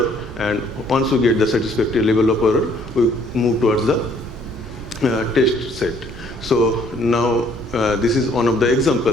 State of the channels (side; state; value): both; normal; correlation 0.62